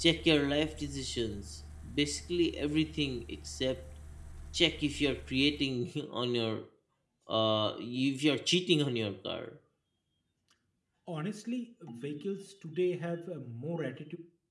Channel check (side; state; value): both; identical; correlation 1.00